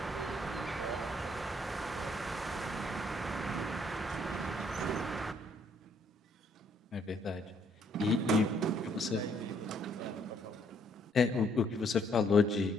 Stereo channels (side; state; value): both; normal; correlation 0.67